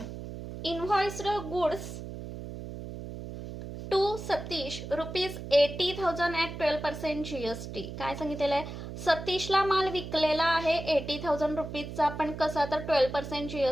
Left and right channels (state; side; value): noise; right; hum, 9 dB below the sound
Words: invoiced goods to Satish ₹80,000 at 12% GST. काय सांगितलेलं आहे सतीशला माल विकलेला आहे ₹80,000 पण कसा तर 12%